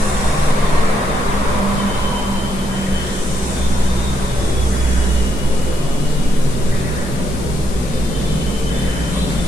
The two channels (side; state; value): left; noise; hiss, 16 dB below the sound